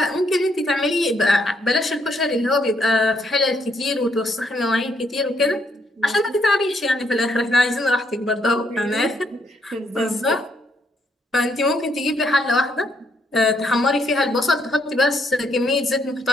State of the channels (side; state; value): both; normal; correlation 0.73